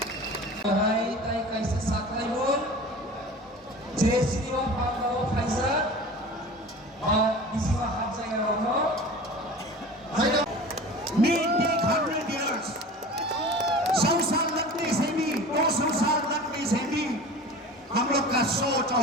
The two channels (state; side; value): normal; both; correlation 0.38